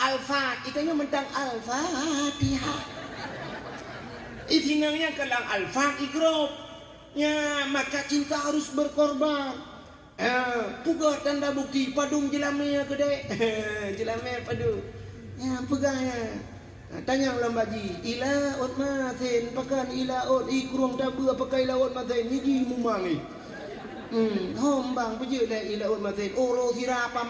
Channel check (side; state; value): both; identical; correlation 1.00